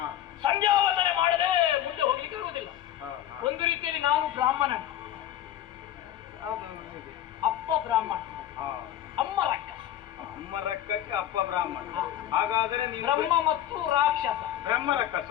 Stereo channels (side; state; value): right; quieter; 11.9 dB